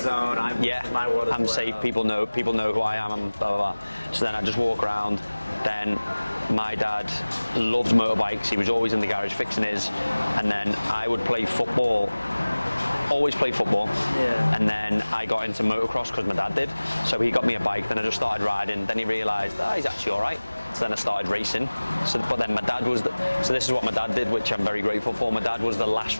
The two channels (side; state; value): both; inverted; correlation -1.00